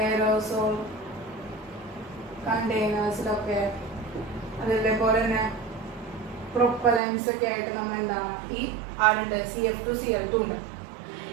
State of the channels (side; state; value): left; drops out; at 7.0 s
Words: എയറോസോൾ കണ്ടെയ്നേഴ്സിലൊക്കെ, അതേപോലെ തന്നെ പ്രൊപ്പലൻസ് ഒക്കെ ആയിട്ട് നമ്മൾ എന്താണ് ഈ ആരുണ്ട്? CF2CL2 ഉണ്ട്.